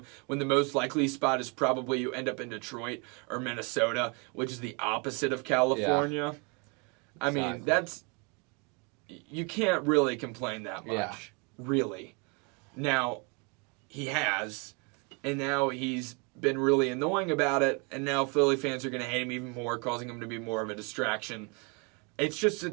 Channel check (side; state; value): left; quieter; 32.5 dB